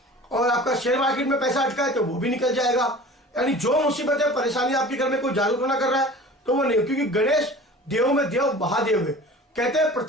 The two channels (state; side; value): normal; both; correlation 0.41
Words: और आपका शेयर मार्केट में पैसा अटका है तो वो भी निकल जाएगा। यानी जो मुसीबतें परेशानी आपके घर में कोई जागरूक ना कर रहा है तो वो नहीं, क्योंकि गणेश देव में देव महादेव है। कहते हैं